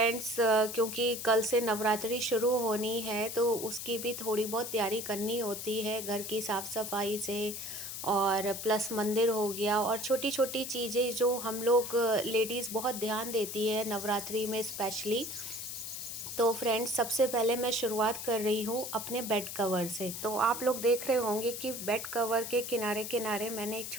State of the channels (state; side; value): noise; left; hiss, 7 dB below the sound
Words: क्योंकि कल से नवरात्रि शुरू होनी है तो उसकी भी थोड़ी बहुत तैयारी करनी होती है, घर की साफ़ सफाई से और प्लस मंदिर हो गया और छोटी छोटी चीज़ें जो हम लोग लेडीज़ बहुत ध्यान देती है नवरात्रि में स्पेशली। तो फ्रेंड्स, सबसे पहले मैं शुरुआत कर रही हूँ अपने बेड कवर से। तो आप लोग देख रहे होंगे कि बेड कवर के किनारे किनारे मैंने एक